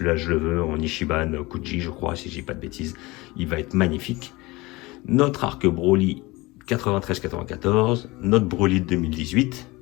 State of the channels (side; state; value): right; quieter; 22.3 dB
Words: je le veux, en Ichiban Kuji je crois, si je dis pas de bêtises. Il va être magnifique. Notre Arc Broly 93-94, notre Broly de 2018,